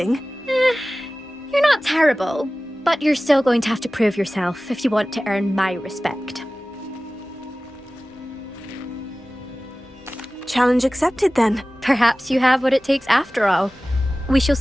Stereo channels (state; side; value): normal; both; correlation 0.97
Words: You're not terrible. But you're still going to have to prove yourself if you want to earn my respect. Challenge accepted, then. Perhaps you have what it takes after all. We shall